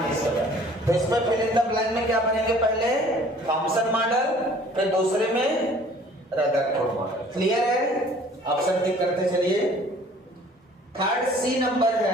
तो इसमें फिल इन द ब्लैंक में क्या बनेंगे? पहले थॉमसन मॉडल, फिर दूसरे में रदरफोर्ड मॉडल। क्लियर है? ऑप्शन टिक करते चलिए। थर्ड सी नंबर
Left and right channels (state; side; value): normal; both; correlation 0.53